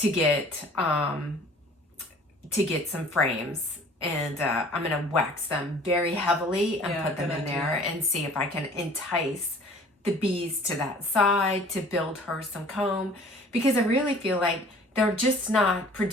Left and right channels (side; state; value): both; normal; correlation 0.50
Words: get some frames, and I'm gonna wax them very heavily and put them in there and see if I can entice the bees to that side to build her some comb, because I really feel like they're just not